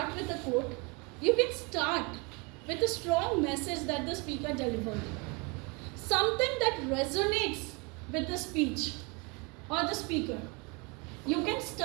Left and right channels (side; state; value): left; quieter; 30.0 dB